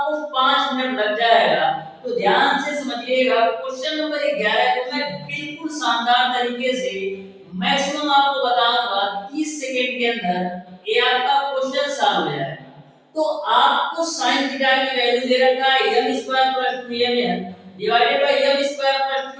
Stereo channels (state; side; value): identical; both; correlation 1.00